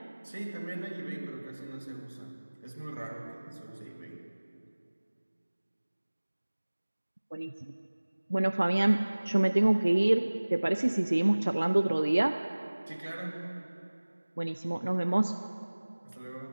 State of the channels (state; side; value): inverted; both; correlation -1.00